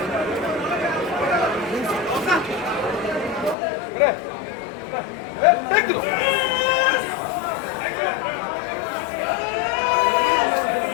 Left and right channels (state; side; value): drops out; right; at 3.6 s